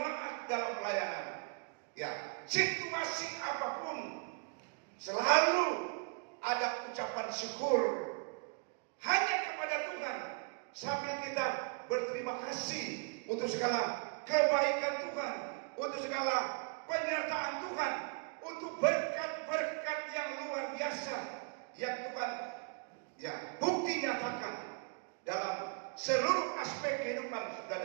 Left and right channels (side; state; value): left; quieter; 37.3 dB